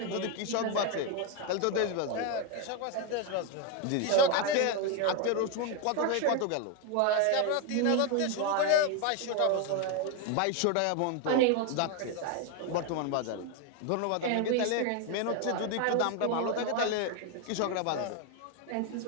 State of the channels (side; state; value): both; different; correlation 0.01